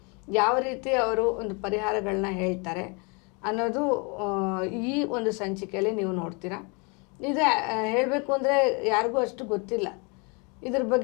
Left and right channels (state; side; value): quieter; right; 32.2 dB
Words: ಯಾವ ರೀತಿ ಅವರು ಒಂದು ಪರಿಹಾರಗಳನ್ನ ಹೇಳ್ತಾರೆ ಅನ್ನೋದು ಈ ಒಂದು ಸಂಚಿಕೆಯಲ್ಲಿ ನೀವು ನೋಡ್ತೀರಾ. ಇದು ಹೇಳಬೇಕು ಅಂದರೆ ಯಾರಿಗೂ ಅಷ್ಟು ಗೊತ್ತಿಲ್ಲ. ಇದ್ರ